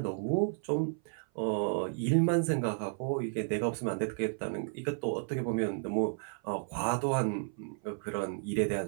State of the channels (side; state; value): left; silent; 56 dB below the other